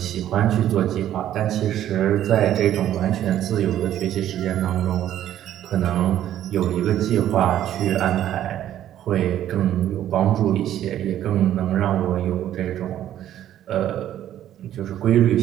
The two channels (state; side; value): quieter; left; 11.7 dB